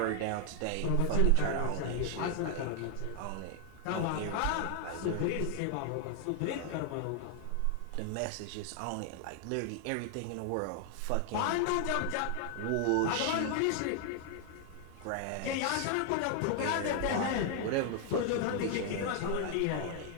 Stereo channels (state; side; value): different; both; correlation 0.00